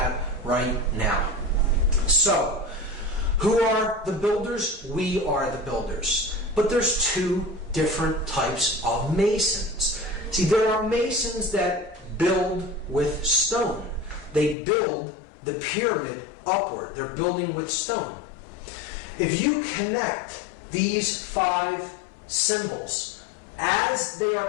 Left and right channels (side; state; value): right; drops out; at 14.6 s